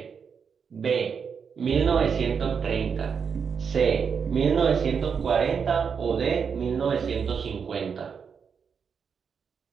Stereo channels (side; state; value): left; quieter; 6.4 dB